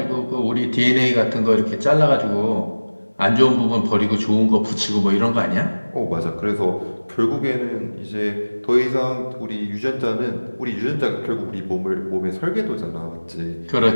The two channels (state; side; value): inverted; both; correlation -1.00